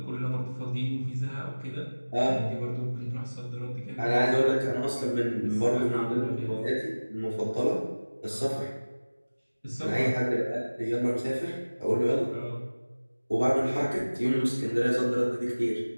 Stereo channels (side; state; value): both; inverted; correlation -1.00